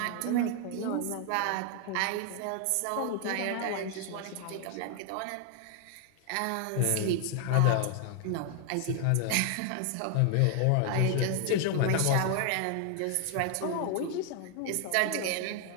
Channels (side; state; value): both; different; correlation 0.00